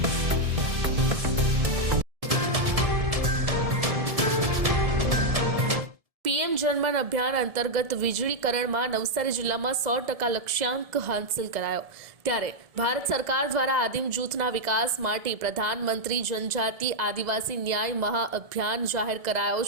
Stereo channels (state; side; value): late; left; 1.7 ms